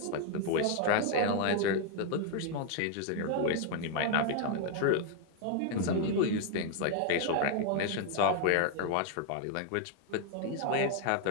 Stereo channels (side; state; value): both; different; correlation 0.00